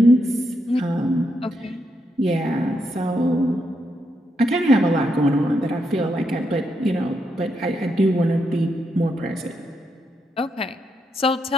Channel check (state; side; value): normal; both; correlation 0.81